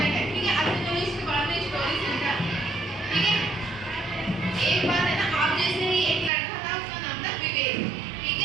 है। ठीक है, अच्छा चलो इसके बाद में स्टोरी सुनते हैं। ठीक है, एक बार है ना, आप जैसे ही एक लड़का था, उसका नाम था विवेक। ठीक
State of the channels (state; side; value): drops out; left; at 6.3 s